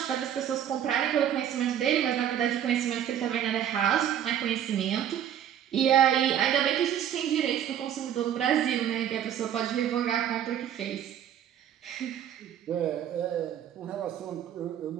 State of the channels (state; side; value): quieter; left; 10.0 dB